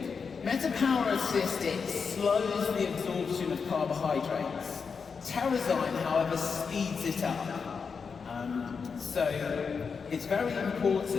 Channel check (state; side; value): quieter; right; 5.6 dB